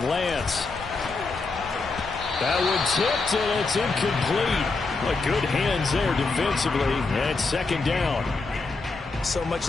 Lance. That one tipped, and it's incomplete. But good hands there defensively, and it's 2nd down. So much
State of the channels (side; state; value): right; quieter; 3.9 dB